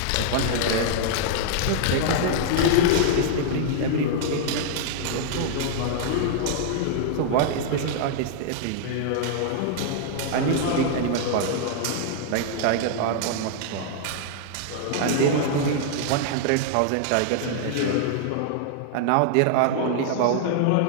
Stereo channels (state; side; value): different; both; correlation -0.01